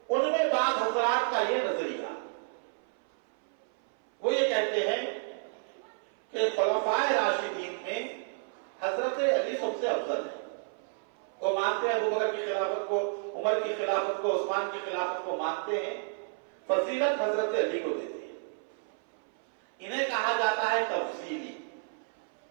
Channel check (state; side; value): silent; left; 57 dB below the other